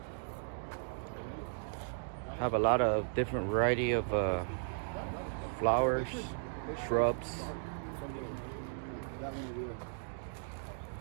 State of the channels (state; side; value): silent; left; digital silence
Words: Have a lot of different variety of flowers, shrubs.